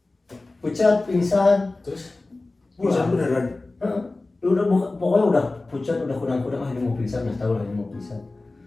pucat pingsan, Terus Bisa beneran. udah pokoknya udah pucat, udah kurang-kurang, ini mau pingsan, udah tahu lah ini mau pingsan,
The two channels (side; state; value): right; quieter; 3.2 dB